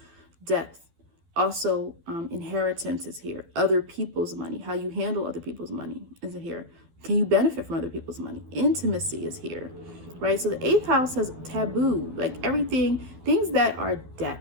depth. Also, inheritance is here. Other people's money, how you handle other people's money is here. Can you benefit from other people's money? Intimacy is here, right? So the 8th house has taboo, like everything, things that are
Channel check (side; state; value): left; late; 12 ms